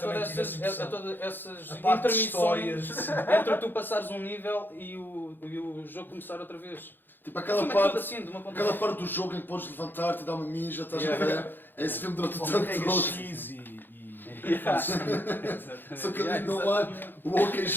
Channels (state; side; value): late; right; 0.095 ms